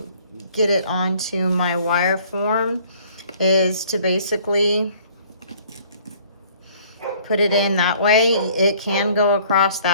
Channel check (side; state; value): both; inverted; correlation -0.56